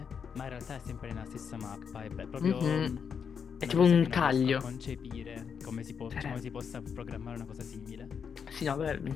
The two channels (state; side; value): quieter; right; 6.8 dB